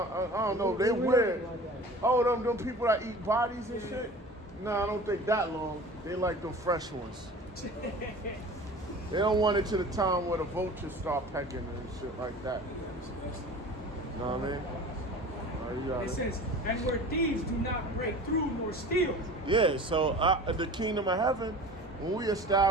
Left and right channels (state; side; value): normal; both; correlation 0.40